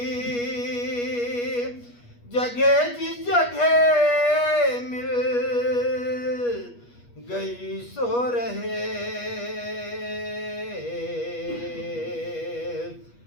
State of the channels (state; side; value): late; right; 8.3 ms